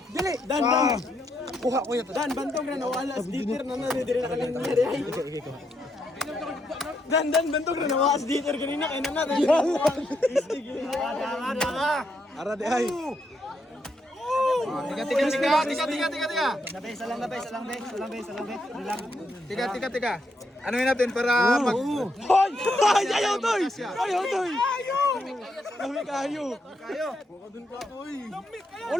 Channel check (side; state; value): both; normal; correlation 0.78